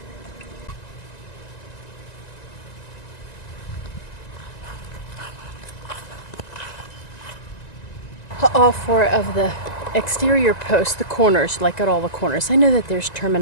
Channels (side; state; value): right; late; 1.9 ms